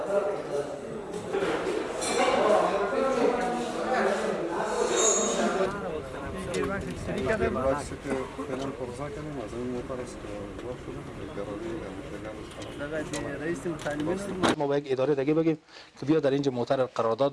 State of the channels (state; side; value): identical; both; correlation 1.00